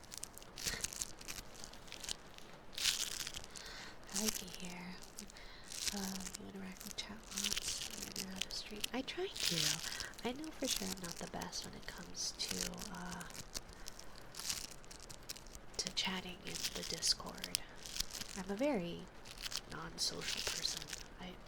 I like it here. You interact with chat bots, you know how to stream. I try to. I know for sure I'm not the best when it comes to chatting in the Discord. I'm a very non-social person. I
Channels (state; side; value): identical; both; correlation 1.00